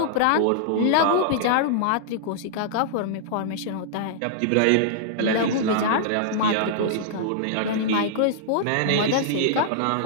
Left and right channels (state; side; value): different; both; correlation -0.01